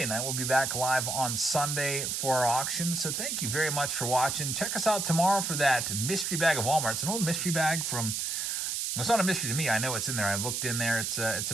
night. We'll be back live on Sunday for our auction. So thank you very much for watching. Check us out tomorrow for that mystery bag of Walmart. It's an old mystery bag from... It's not a mystery to me. I know it's in there. I looked in there. It's a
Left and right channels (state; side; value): noise; right; hiss, 1 dB below the sound